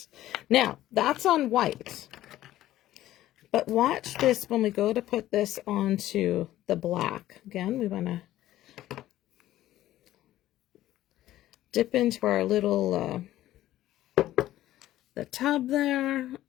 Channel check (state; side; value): quieter; right; 14.2 dB